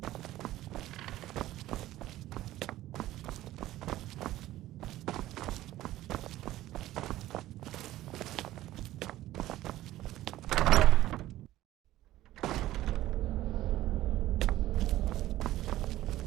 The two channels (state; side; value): quieter; left; 15.0 dB